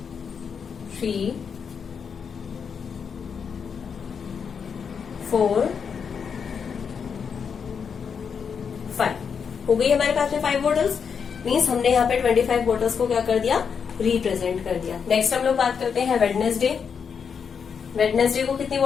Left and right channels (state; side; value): quieter; right; 6.5 dB